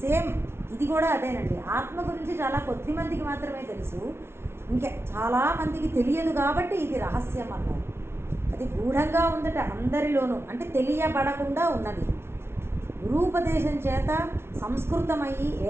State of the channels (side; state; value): left; late; 0.12 ms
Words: సేమ్ ఇది కూడా అదేనండి. ఆత్మ గురించి చాలా కొద్ది మందికి మాత్రమే తెలుసు, ఇంకా చాలా మందికి తెలియదు కాబట్టి ఇది రహస్యం అన్నారు. అది గూఢంగా ఉందట అందరిలోనూ, అంటే తెలియబడకుండా ఉన్నది. గురూపదేశం చేత సంస్కృతమయ్యి